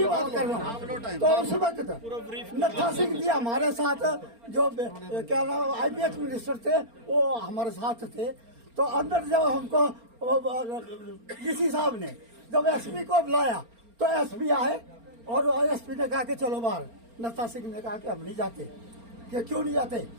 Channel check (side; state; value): left; late; 4.3 ms